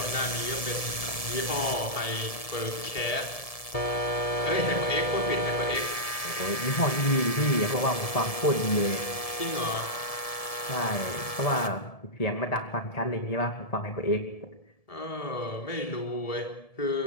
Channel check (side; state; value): right; late; 1.7 ms